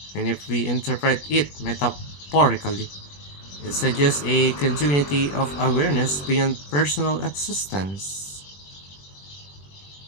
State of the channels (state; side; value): late; right; 21 ms